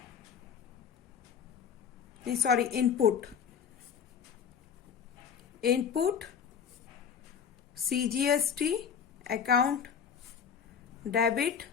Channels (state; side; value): quieter; right; 7.3 dB